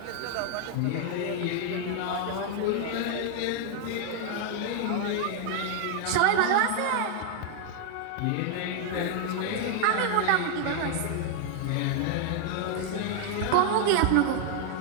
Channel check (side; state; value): both; different; correlation 0.00